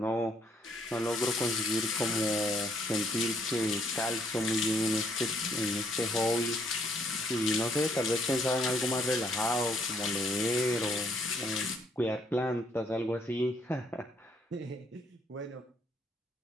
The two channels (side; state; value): both; normal; correlation 0.68